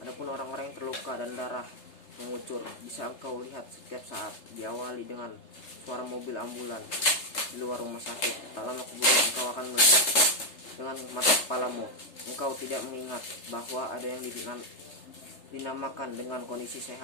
Adapun orang-orang yang terluka dan darah mengucur bisa engkau lihat setiap saat. Diawali dengan suara mobil ambulan di luar rumah sakit. Tak lama kemudian engkau akan melihat dengan mata kepalamu. Engkau tidak mengingat bahwa ada yang dinamakan dengan kondisi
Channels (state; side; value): late; right; 3.3 ms